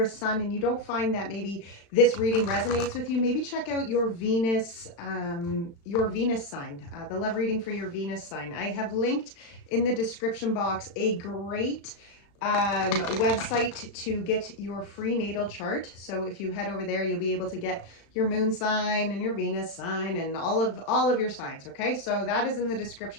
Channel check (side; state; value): right; late; 35 ms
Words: Sun and you don't find that maybe this reading resonates with you, maybe check out your Venus sign, the love reading for your Venus sign. I have linked in the description box a great website to get your free natal chart. So if you head over there, you'll be able to get your moon sign and your Venus sign and all of your signs. Okay, so that is in the